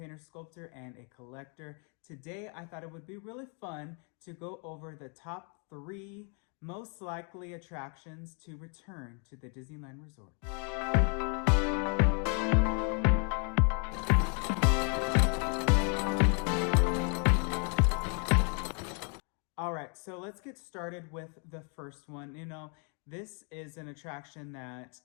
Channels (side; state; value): right; quieter; 38.9 dB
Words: sculptor, and a collector. Today, I thought it would be really fun to go over the top 3 most likely attractions to return to the Disneyland Resort. All right, so let's get started with the first one. This is an attraction that